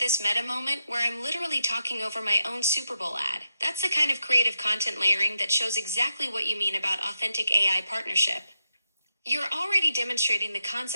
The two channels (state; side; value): inverted; both; correlation -0.84